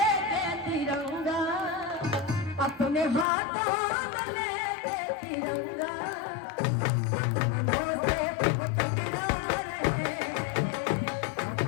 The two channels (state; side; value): drops out; right; at 3.2 s